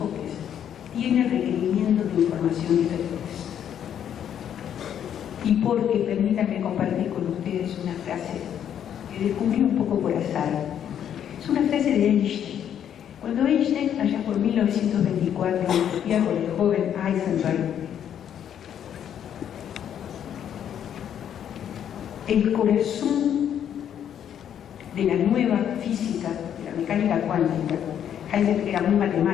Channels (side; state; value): right; quieter; 9.4 dB